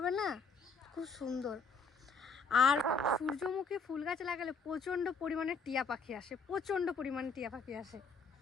না, খুব সুন্দর। আর সূর্যমুখী ফুল গাছ লাগালে প্রচণ্ড পরিমাণে টিয়া পাখি আসে, প্রচণ্ড পরিমাণে টিয়া পাখি আসে।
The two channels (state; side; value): quieter; right; 4.1 dB